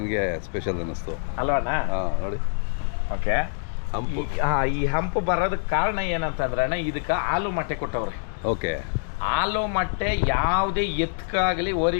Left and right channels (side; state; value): right; silent; digital silence